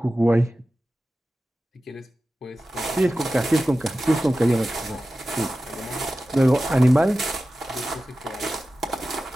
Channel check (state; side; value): normal; both; correlation 0.94